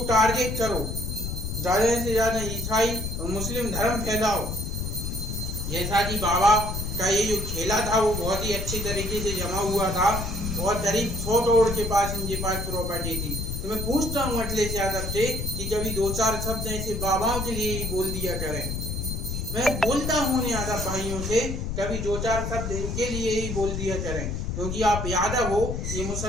टारगेट करो, ज़्यादा से ज़्यादा ईसाई और मुस्लिम धर्म फैलाओ। जैसा कि बाबा का ये जो खेला था वो बहुत ही अच्छी तरीके से जमा हुआ था और करीब 100 करोड़ के पास इनके पास प्रॉपर्टी थी। तो मैं पूछता हूँ अखिलेश यादव से कि कभी 2-4 शब्द ऐसे बाबाओं के लिए ही बोल दिया करें। मैं बोलता हूँ यादव भाइयों से, कभी 2-4 शब्द इनके लिए ही बोल दिया करें, क्योंकि आप यादव हो, ये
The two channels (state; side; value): noise; left; rumble, 4 dB below the sound